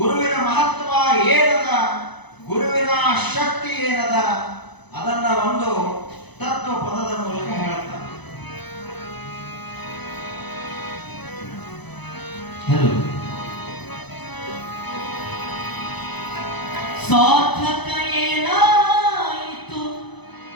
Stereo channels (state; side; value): late; right; 0.99 ms